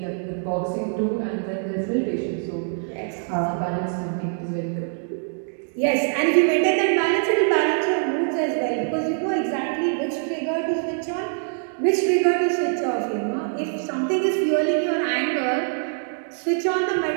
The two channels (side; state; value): left; silent; 63 dB below the other